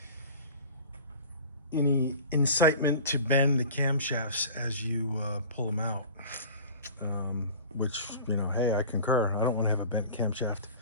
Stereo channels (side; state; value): both; inverted; correlation -0.40